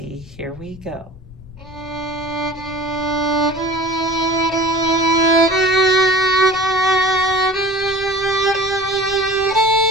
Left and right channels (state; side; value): noise; left; rumble, 18 dB below the sound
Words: Here we go.